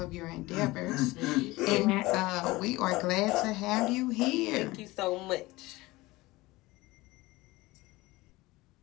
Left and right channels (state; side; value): quieter; right; 20.3 dB